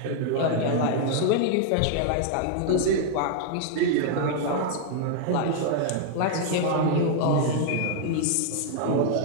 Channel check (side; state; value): both; different; correlation -0.01